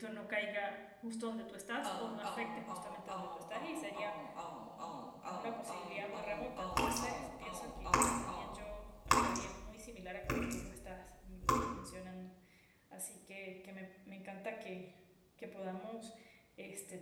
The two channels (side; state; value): both; identical; correlation 1.00